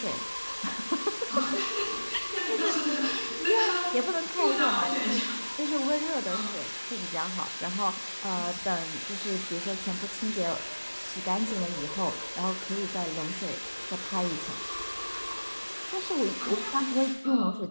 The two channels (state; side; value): inverted; both; correlation -1.00